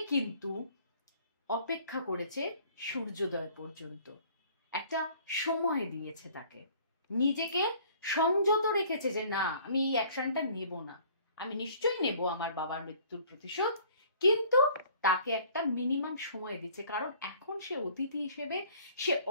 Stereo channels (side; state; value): both; inverted; correlation -0.54